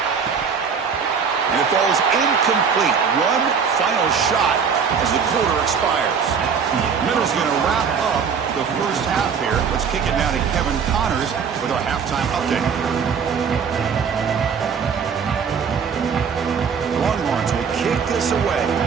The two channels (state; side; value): quieter; left; 6.4 dB